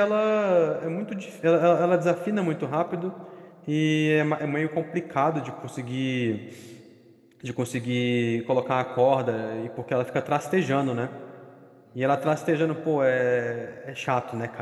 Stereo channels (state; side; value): identical; both; correlation 1.00